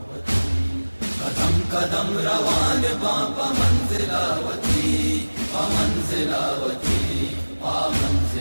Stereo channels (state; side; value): inverted; both; correlation -1.00